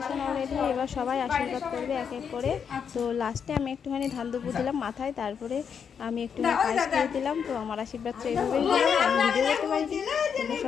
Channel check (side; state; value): right; quieter; 7.1 dB